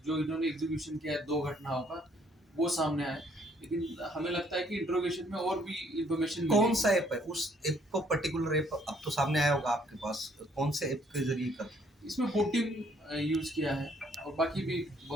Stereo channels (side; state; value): both; normal; correlation 0.65